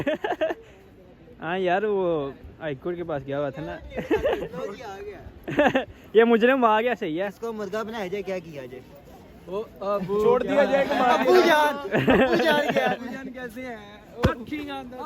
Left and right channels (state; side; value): identical; both; correlation 1.00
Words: हाँ यार वो हाईकोर्ट के पास गया हुआ था ना। ये मुजरिम आ गया, सही है। इसको मुर्गा बनाया जाए, क्या किया जाए? छोड़ दिया जाए। अबू जान कैसे हैं?